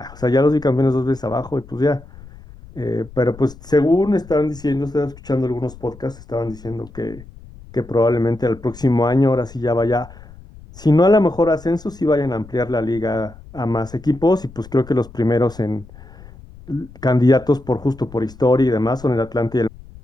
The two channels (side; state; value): left; noise; rumble, 20 dB below the sound